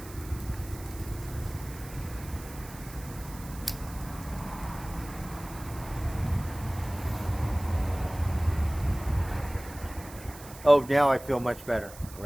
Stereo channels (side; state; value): right; noise; hiss, 17 dB below the sound